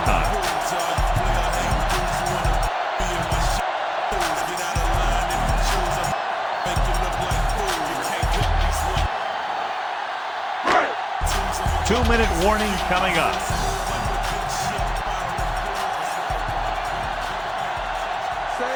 time. Two-minute warning coming up.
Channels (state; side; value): identical; both; correlation 1.00